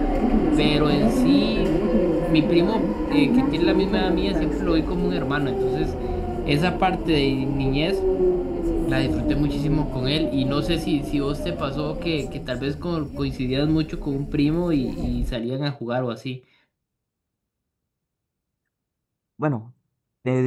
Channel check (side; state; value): both; identical; correlation 1.00